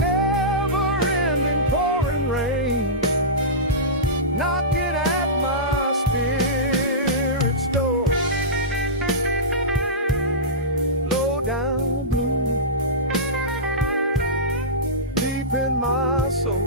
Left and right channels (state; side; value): normal; both; correlation -0.18